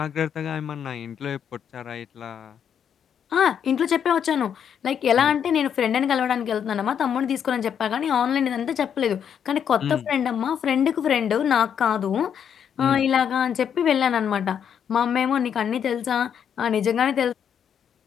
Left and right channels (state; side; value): quieter; right; 8.3 dB